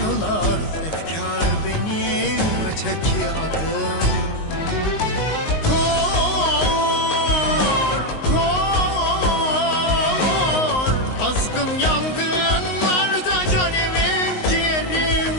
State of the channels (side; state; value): right; late; 19 ms